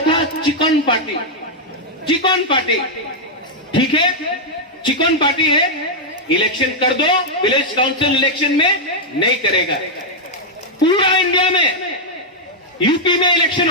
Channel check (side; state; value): both; normal; correlation -0.03